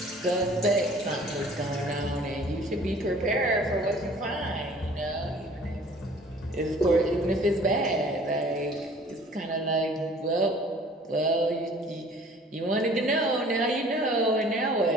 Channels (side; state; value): both; normal; correlation 0.51